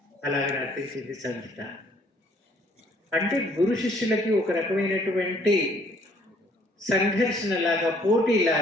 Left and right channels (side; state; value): both; normal; correlation 0.62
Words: అలాగే నర్తించింది సంగీత. అంటే గురు శిష్యులకి ఒక రకమైనటువంటి సంఘర్షణలాగా,